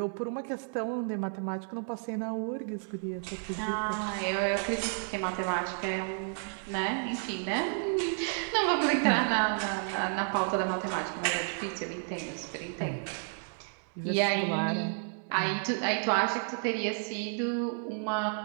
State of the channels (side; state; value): left; silent; 57 dB below the other